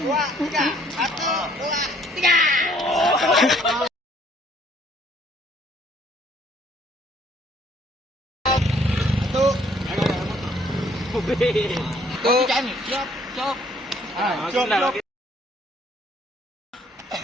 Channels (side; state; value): both; normal; correlation 0.62